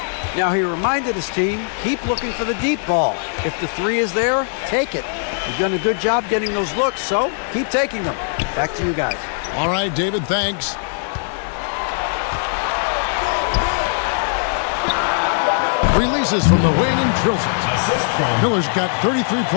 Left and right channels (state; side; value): silent; right; 66 dB below the other